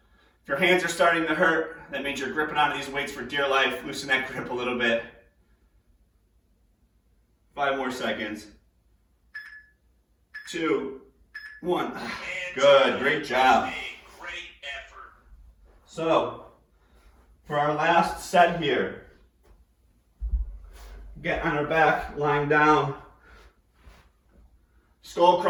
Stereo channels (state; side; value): identical; both; correlation 1.00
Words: If your hands are starting to hurt, that means you're gripping onto these weights for dear life. Loosen that grip a little bit. 5 more seconds. 2, 1. Good, great job. So, for our last set here, get on our back, lying down. Skull